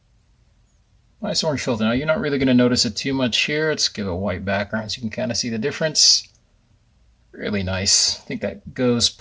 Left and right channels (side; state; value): both; identical; correlation 1.00